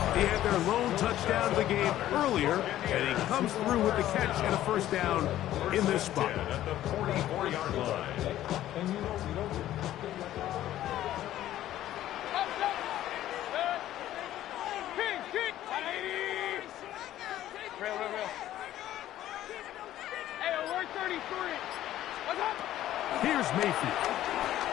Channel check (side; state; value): right; quieter; 13.2 dB